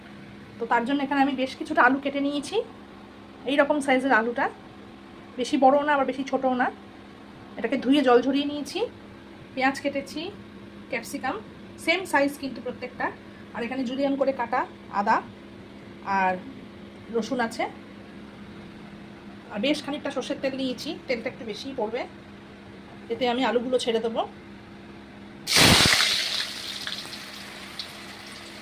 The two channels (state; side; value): identical; both; correlation 1.00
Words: তো তার জন্য এখানে আমি বেশ কিছুটা আলু কেটে নিয়েছি। এই রকম সাইজের আলুটা, বেশি বড়ও না আবার বেশি ছোটও না। এটাকে ধুয়ে জল ঝরিয়ে নিয়েছি। পেঁয়াজ কেটেছি, ক্যাপসিকাম সেম সাইজ কিন্তু প্রত্যেকটা। আর এখানে জুলিয়ান করে কাটা আদা আর রসুন আছে। আর বেশ খানিকটা সর্ষের তেল নিয়েছি, তেলটা একটু বেশিই পড়বে। এতে আমি আলুগুলো ছেড়ে দেবো।